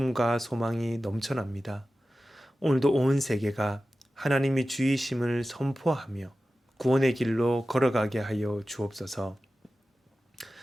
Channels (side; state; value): both; normal; correlation 0.94